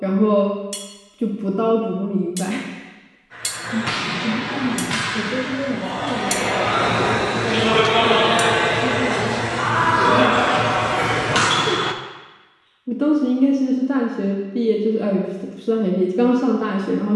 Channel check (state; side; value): identical; both; correlation 1.00